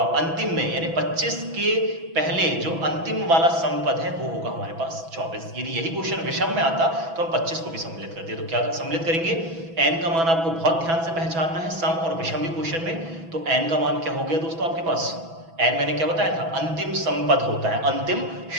अंतिम में यानी 25 के पहले जो अंतिम वाला समपद है वो होगा हमारे पास 24। यदि यही क्वेश्चन विषम में आता तो हम 25 को भी सम्मिलित करते। तो क्या सम्मिलित करेंगे? n का मान आपको बहुत ध्यान से पहचानना है, सम और विषम भी क्वेश्चन में। तो n का मान क्या हो गया दोस्तों आपके पास? n मैंने क्या बताया था? अंतिम समपद होता है, अंतिम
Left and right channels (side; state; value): left; late; 6.1 ms